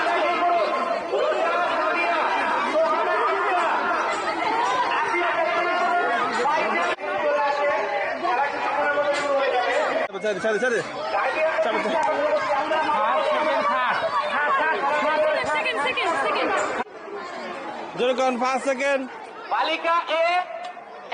জনগণ 5 সেকেন্ড। বালিকা এ,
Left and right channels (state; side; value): identical; both; correlation 1.00